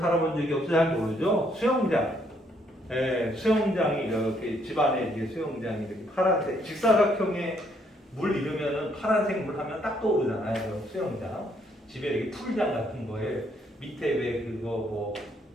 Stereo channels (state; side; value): normal; both; correlation 0.70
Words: 적이 없어서 잘 모르죠? 수영장. 수영장이 이렇게 집안에 이제 수영장이 이렇게 파란색 직사각형의 물 이르면은 파란색 물 하면 딱 떠오르잖아요. 수영장. 집에 이렇게 풀장 같은 거에 밑에 왜 그거 뭐